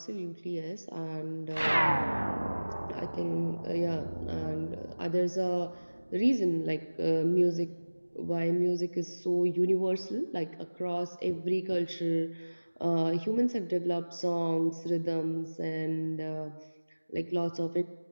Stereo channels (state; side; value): inverted; both; correlation -1.00